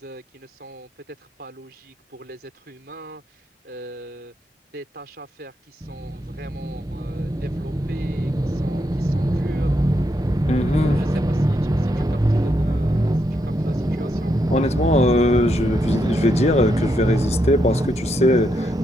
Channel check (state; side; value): normal; both; correlation 0.80